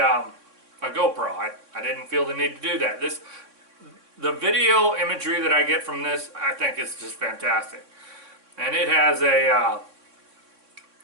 GoPro. I didn't feel the need to do that. The video imagery that I get from this, I think is just fantastic. And it has a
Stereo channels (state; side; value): late; left; 3.6 ms